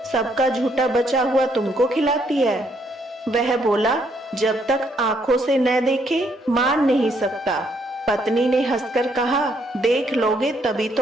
सबका झूठा बचा हुआ तुमको खिलाती है। वह बोला, जब तक आंखों से न देखे मान नहीं सकता। पत्नी ने हंसकर कहा, देख लोगे तभी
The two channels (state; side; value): normal; both; correlation 0.71